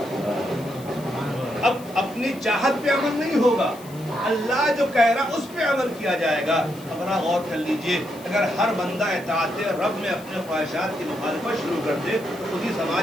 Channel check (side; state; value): left; noise; hiss, 21 dB below the sound